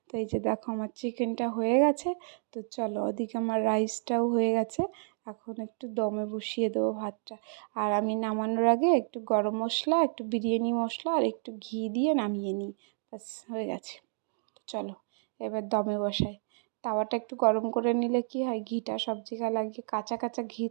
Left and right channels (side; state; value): left; silent; digital silence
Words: তো এই যে দেখো আমার চিকেনটা হয়ে গেছে, তো চলো ওদিকে আমার রাইসটাও হয়ে গেছে, এখন একটু দমে বসিয়ে দেবো ভাতটা। আর আমি নামানোর আগে একটু গরম মশলা একটু বিরিয়ানি মশলা আর একটু ঘি দিয়ে নামিয়ে নিই, ব্যাস হয়ে গেছে। চলো এবার দমে বসাই। তাওয়াটা একটু গরম করে নিলে কি হয়, ঘিটা সব জায়গায় লাগে, কাঁচা কাঁচা ঘি